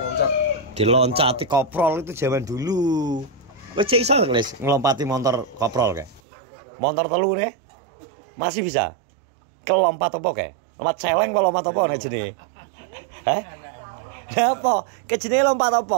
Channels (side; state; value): left; drops out; at 6.2 s